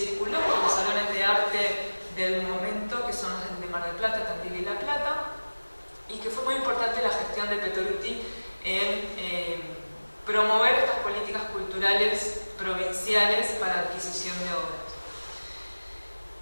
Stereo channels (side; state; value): both; inverted; correlation -1.00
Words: por los salones de arte del momento, que son los de Mar del Plata, Tandil y La Plata, y que fue muy importante la gestión de Pietoluti en promover estas políticas culturales provinciales para adquisición de obras.